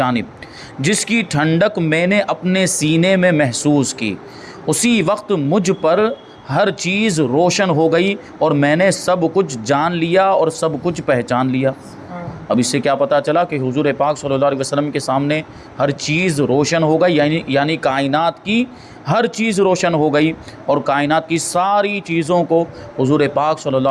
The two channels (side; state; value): both; identical; correlation 1.00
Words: جس کی ٹھنڈک میں نے اپنے سینے میں محسوس کی۔ اسی وقت مجھ پر ہر چیز روشن ہو گئی اور میں نے سب کچھ جان لیا اور سب کچھ پہچان لیا۔ اب اس سے کیا پتہ چلا کہ حضور پاک صلی اللہ علیہ وسلم کے سامنے ہر چیز روشن ہو گئی، یعنی کائنات کی ہر چیز روشن ہو گئی اور کائنات کی ساری چیزوں کو حضور پاک صلی اللہ